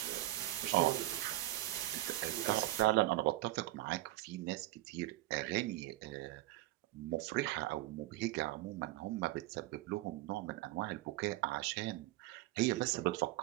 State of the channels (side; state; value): left; quieter; 16.9 dB